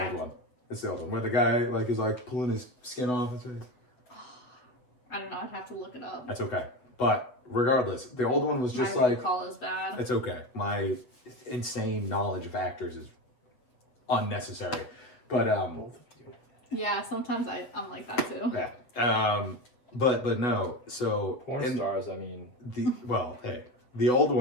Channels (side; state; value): right; late; 8.1 ms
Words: old one. It's the old one where the guy like is like pulling his skin off his face. I don't know. I'd have to look it up. That's okay. But regardless, the old one was just My like recall is bad. it's okay. My insane knowledge of actors is unnecessary. But Yeah, sometimes I'm like that too. yeah. But no. So Porn stars, I mean. The old